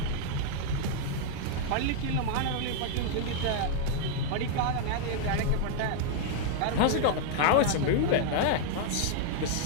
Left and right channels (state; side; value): different; both; correlation -0.01